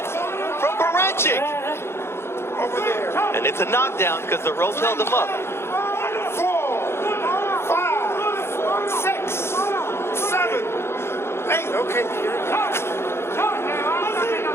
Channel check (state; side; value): late; right; 0.12 ms